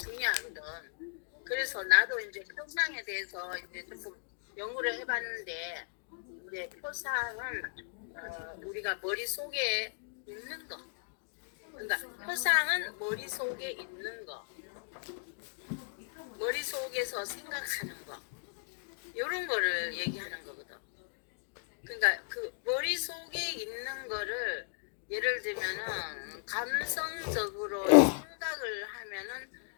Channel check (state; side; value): silent; right; digital silence